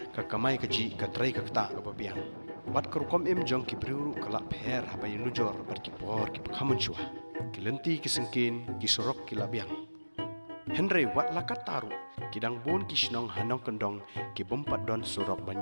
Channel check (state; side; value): inverted; both; correlation -1.00